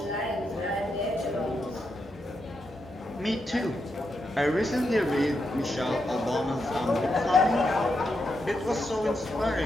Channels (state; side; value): normal; both; correlation 0.84